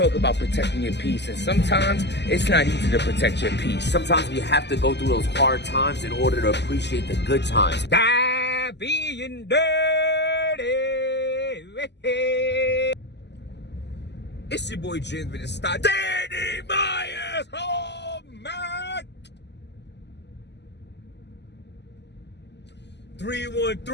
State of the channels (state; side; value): late; right; 0.50 ms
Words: about protecting your peace. And sometimes it's not easy to protect your peace. Sometimes we have to go through those hard times in order to appreciate the good times. Die being dirty. It's your boy James with the style. Danny Myers. Oh man.